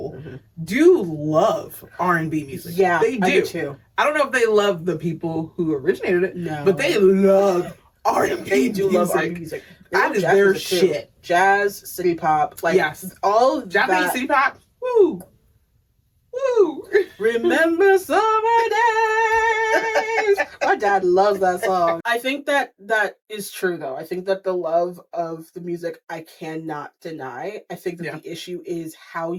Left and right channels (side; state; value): both; identical; correlation 1.00